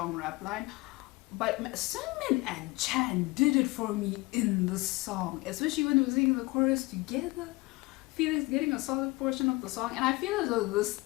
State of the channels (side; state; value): right; quieter; 22.8 dB